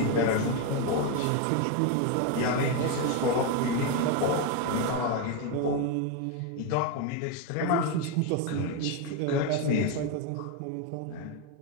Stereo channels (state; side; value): different; both; correlation 0.02